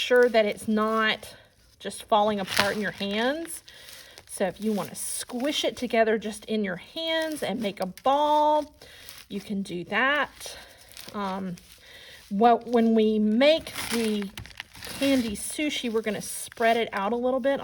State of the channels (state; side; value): identical; both; correlation 1.00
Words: that it's not just falling apart in your hands. So if you want to squish it together just in your hands and make a ball, you can do that. When we make the candy sushi, we're going to spread it out a little bit